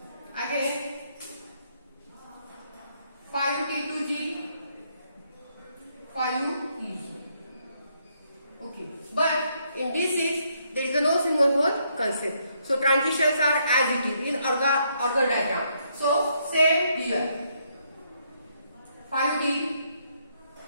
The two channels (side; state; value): both; inverted; correlation -0.74